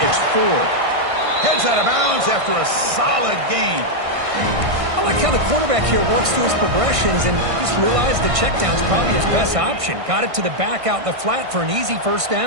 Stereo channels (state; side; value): late; left; 1.6 ms